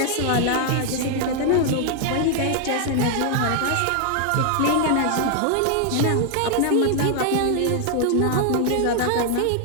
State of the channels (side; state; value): both; different; correlation 0.00